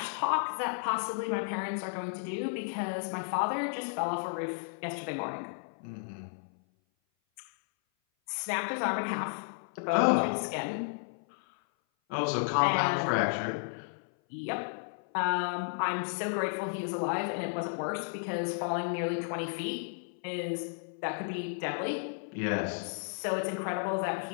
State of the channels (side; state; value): right; silent; 56 dB below the other